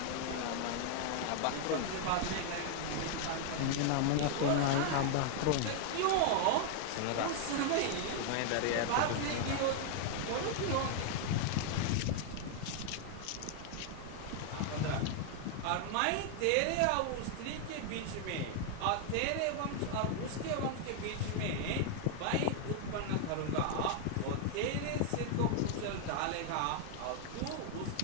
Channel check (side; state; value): both; different; correlation 0.00